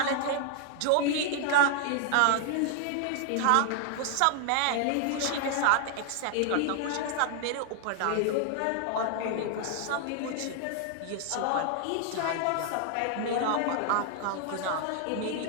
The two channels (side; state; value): both; different; correlation 0.00